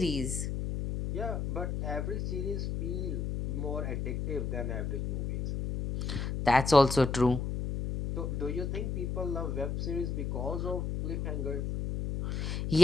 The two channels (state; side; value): noise; left; hum, 1 dB below the sound